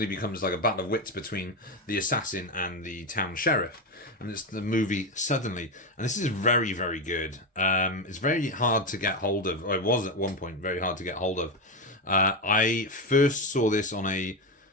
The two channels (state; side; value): normal; both; correlation 0.13